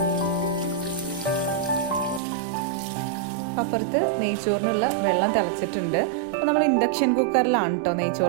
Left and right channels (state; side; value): drops out; left; at 2.2 s